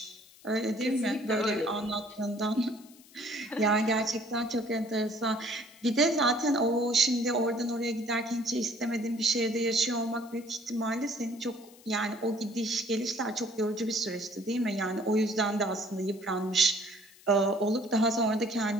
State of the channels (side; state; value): left; noise; hiss, 24 dB below the sound